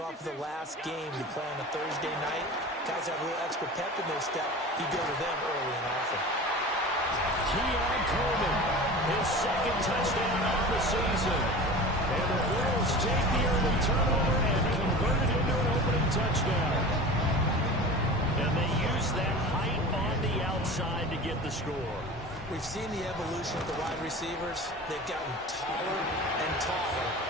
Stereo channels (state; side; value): normal; both; correlation 0.35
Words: of the last game you play on a Thursday night, guys have a little extra pep in their step. You go to them early and often. Keon Coleman, his second touchdown of the season. And the Bills take the early turnover and convert it into an opening touchdown. And they use that height on the outside to get the score. We've seen the evolution of the wide receivers. They've gotten taller and taller,